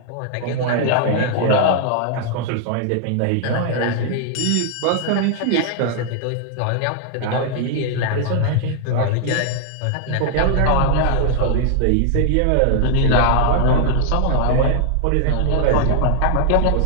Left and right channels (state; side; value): different; both; correlation 0.00